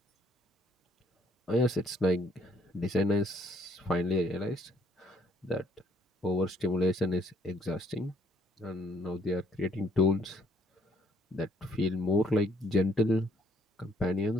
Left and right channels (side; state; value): both; normal; correlation 0.66